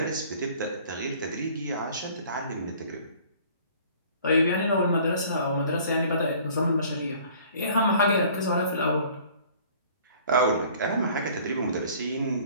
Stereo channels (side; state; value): both; inverted; correlation -0.52